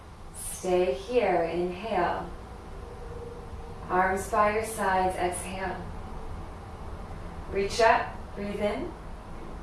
Stay here, inhale. Arms by your sides, exhale. Reach up, breathe in.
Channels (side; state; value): both; identical; correlation 1.00